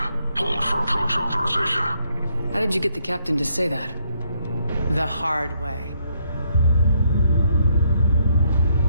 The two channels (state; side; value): inverted; both; correlation -0.72